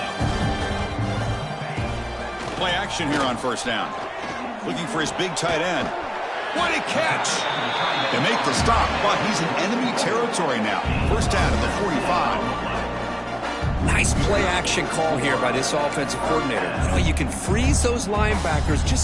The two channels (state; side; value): identical; both; correlation 1.00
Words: Play action here on 1st down. Looking for his big tight end. What a catch! They make the stop, but he's in enemy territory now. 1st down at the 45. Nice play action call here by this offensive coordinator. You know, you can freeze those linebackers